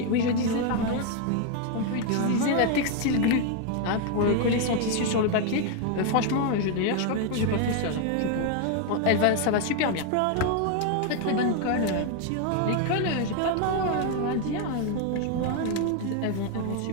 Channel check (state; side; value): different; both; correlation 0.01